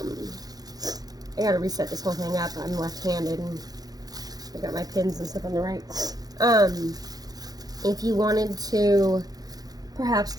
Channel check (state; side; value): late; left; 0.19 ms